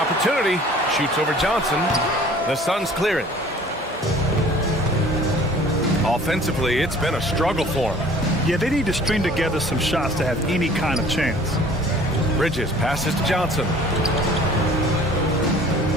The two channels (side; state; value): both; normal; correlation 0.50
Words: Shoots over Johnson. The Suns clear it. Offensively, it's been a struggle for him. Yeah, they need to string together some shots to have any kind of chance. Bridges passes to Johnson.